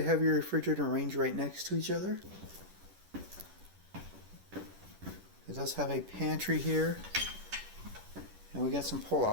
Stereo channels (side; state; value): left; late; 11 ms